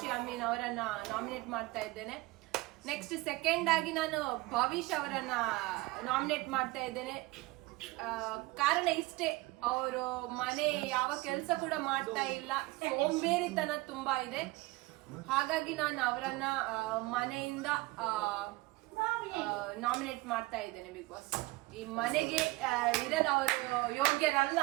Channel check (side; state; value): left; quieter; 21.5 dB